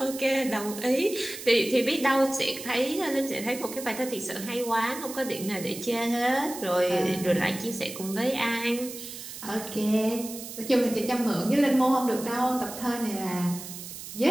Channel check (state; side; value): noise; right; hiss, 11 dB below the sound